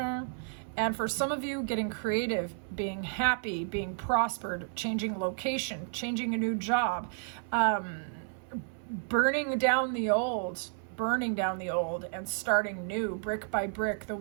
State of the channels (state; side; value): silent; left; 57 dB below the other